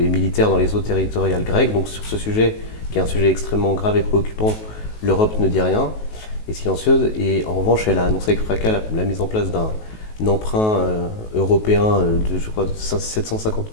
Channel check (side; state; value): right; late; 19 ms